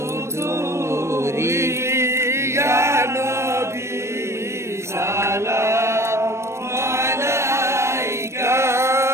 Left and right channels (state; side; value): late; left; 0.13 ms